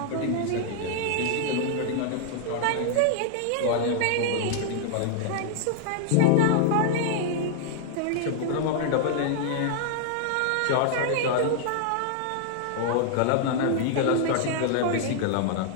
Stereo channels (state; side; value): different; both; correlation 0.00